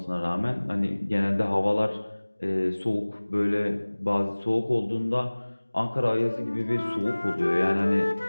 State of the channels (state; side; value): inverted; both; correlation -1.00